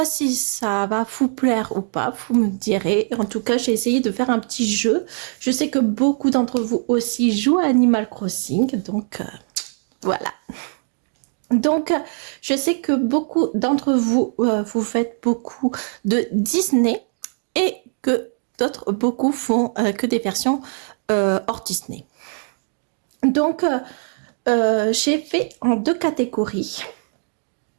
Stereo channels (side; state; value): left; silent; 56 dB below the other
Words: si ça va vous plaire ou pas, vous me direz. En tout cas, j'ai essayé de faire un petit jeu. Je sais que beaucoup d'entre vous aussi jouent à Animal Crossing, donc voilà. Donc, je sais que beaucoup d'entre vous, vous faites beaucoup de Disney et que d'autres, beaucoup font que des versions hors Disney. Donc, j'ai fait en 2 catégories.